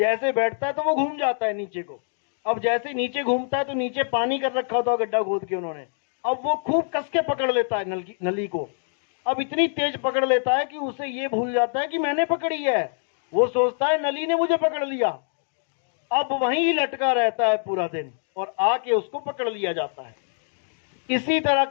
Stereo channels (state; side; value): silent; right; digital silence